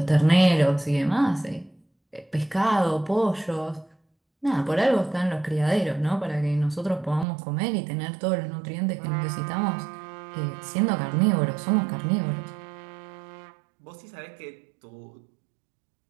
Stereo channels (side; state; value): left; drops out; at 7.2 s